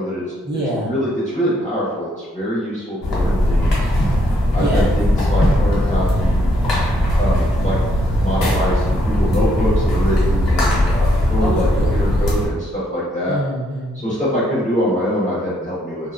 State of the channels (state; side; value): normal; both; correlation 0.73